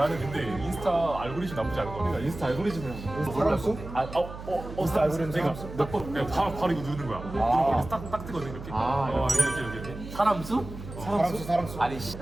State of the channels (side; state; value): right; noise; hum, 12 dB below the sound